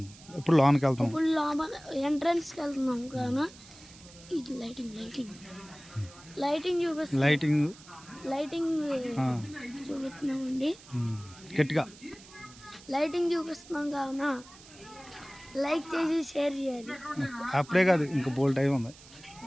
ఇప్పుడు లోపలికి వెళ్తాం. ఇప్పుడు లోపల ఎంట్రన్స్కి వెళ్తున్నాం కావున ఇది లైటింగ్ చూపిస్తాం. లైటింగ్ చూపిస్తున్నామండి. గట్టిగా లైటింగ్ చూపిస్తున్నాం కావున లైక్ చేసి షేర్ చేయాలి. అప్పుడే కాదు ఇంకా బోల్ టైం ఉంది.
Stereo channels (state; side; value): noise; right; hiss, 21 dB below the sound